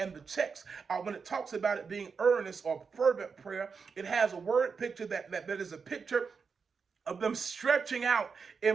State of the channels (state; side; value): quieter; left; 5.5 dB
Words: the text, when it talks about it being earnest or fervent prayer, it has a word picture that is a picture of them stretching out